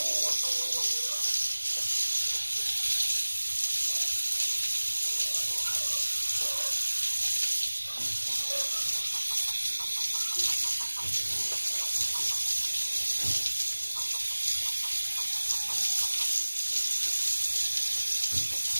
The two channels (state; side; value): inverted; both; correlation -1.00